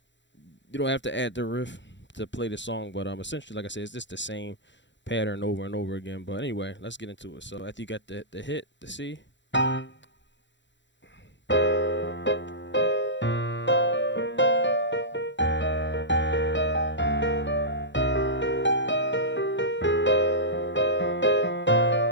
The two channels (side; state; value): right; late; 0.53 ms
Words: you don't have to add the riff to play the song, but essentially, like I said, it's just the same pattern over and over again. But anyway, let's get into it. So after you got the hit, the C.